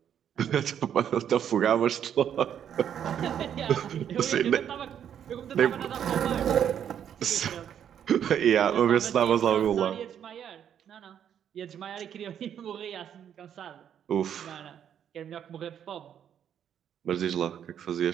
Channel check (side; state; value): left; quieter; 9.2 dB